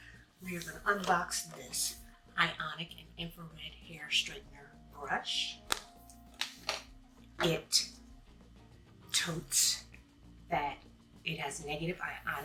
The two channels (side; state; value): both; identical; correlation 1.00